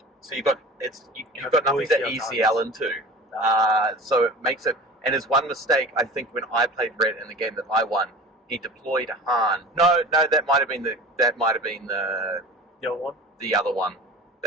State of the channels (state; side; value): normal; both; correlation 0.38